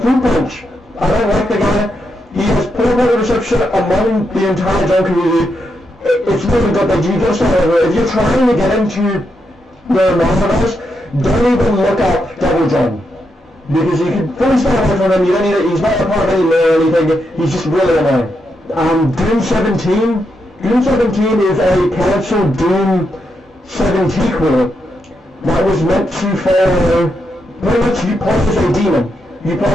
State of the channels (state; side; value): normal; both; correlation 0.82